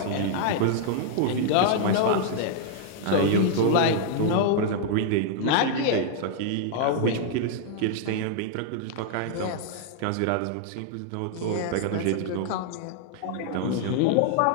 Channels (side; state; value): both; different; correlation -0.01